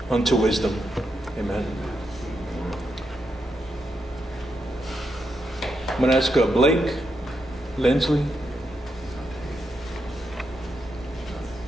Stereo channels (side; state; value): both; normal; correlation 0.83